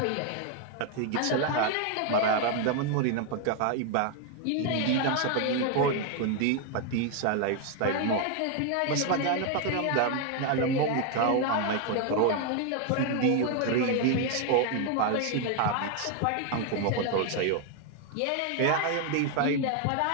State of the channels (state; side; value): different; both; correlation 0.01